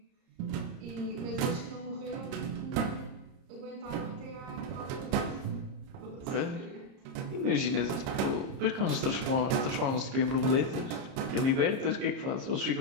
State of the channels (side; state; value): left; late; 30 ms